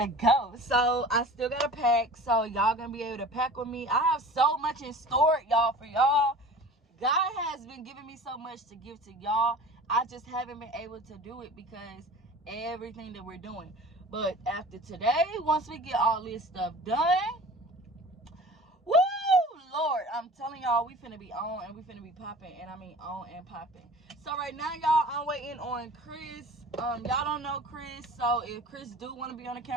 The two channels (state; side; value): normal; both; correlation 0.41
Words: So I still gotta pack, so y'all gonna be able to pack with me. I have so much in store, y'all, for y'all. God has been giving me so much to give to y'all. I just haven't been able to do it because everything that we're doing. But after today, once we get all this stuff done, woo, Lord, I'm telling y'all, we finna be on and we finna be popping, and I mean on and popping. So right now, y'all, I'm waiting on Chris. Y'all don't know Chris, so if Chris do want to be on the